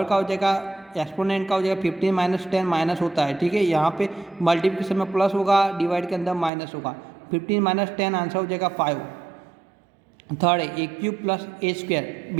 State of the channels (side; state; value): left; drops out; at 6.5 s